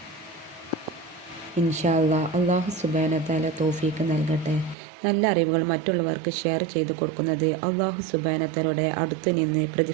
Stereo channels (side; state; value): left; drops out; at 4.8 s